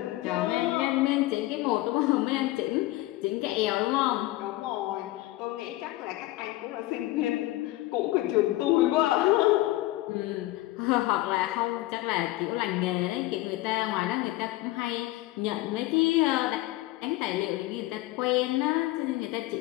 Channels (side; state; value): right; quieter; 17.7 dB